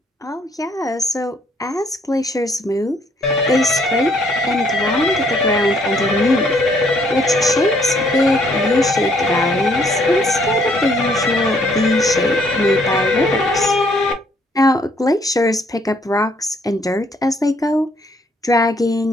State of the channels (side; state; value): both; normal; correlation 0.66